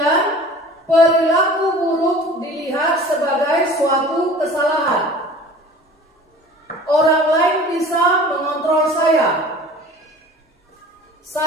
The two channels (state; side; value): normal; both; correlation 0.43